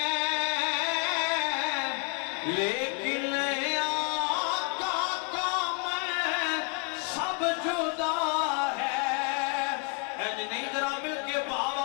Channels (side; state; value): right; quieter; 33.1 dB